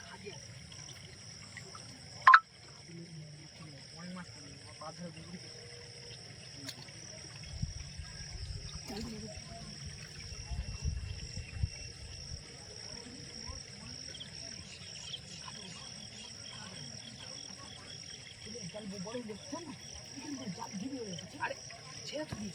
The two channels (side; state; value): both; normal; correlation 0.96